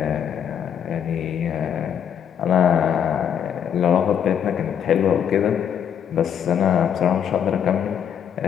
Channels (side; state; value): right; quieter; 8.6 dB